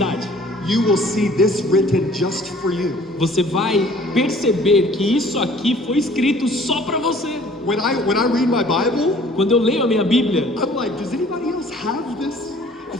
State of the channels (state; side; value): normal; both; correlation 0.53